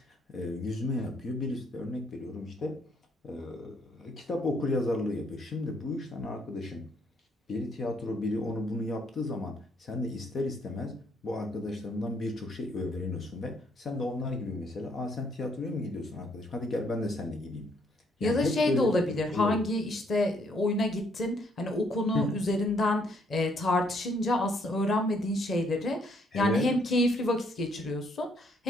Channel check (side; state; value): both; normal; correlation 0.69